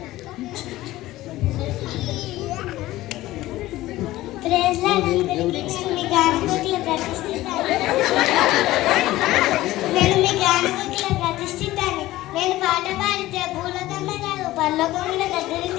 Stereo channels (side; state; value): right; quieter; 16.6 dB